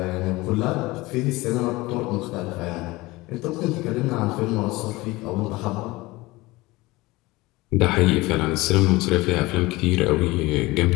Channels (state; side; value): quieter; right; 21.0 dB